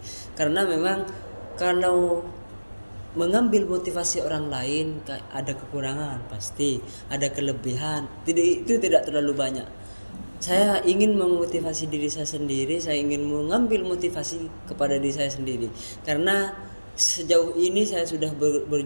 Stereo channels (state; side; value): inverted; both; correlation -1.00